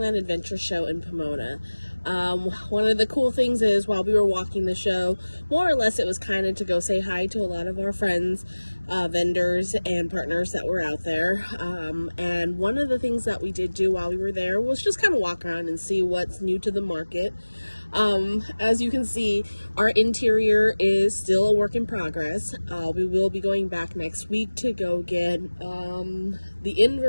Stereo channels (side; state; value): both; inverted; correlation -1.00